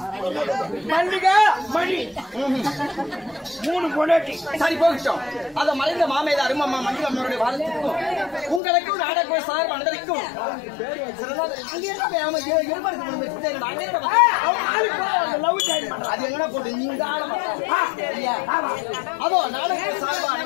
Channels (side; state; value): right; drops out; at 8.6 s